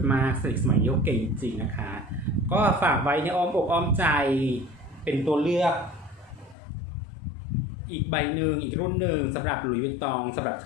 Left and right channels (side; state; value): right; drops out; at 6.6 s